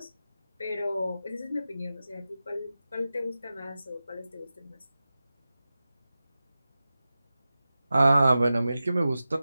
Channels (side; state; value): both; inverted; correlation -0.94